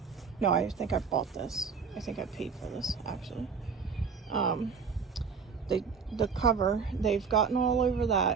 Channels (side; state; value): left; quieter; 5.9 dB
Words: No, I think I bought this. I think I paid for this, actually. The cover, they've gotten all over